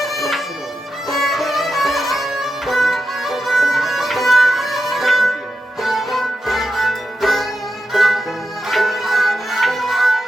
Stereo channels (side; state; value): both; normal; correlation 0.88